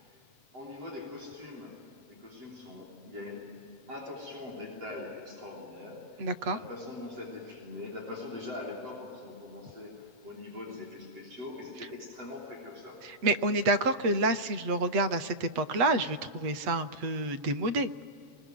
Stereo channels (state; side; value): late; left; 8.1 ms